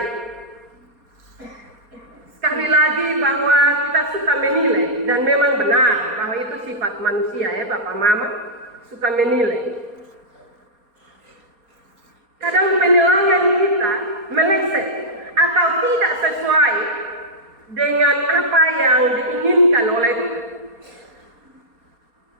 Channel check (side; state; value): left; late; 4.3 ms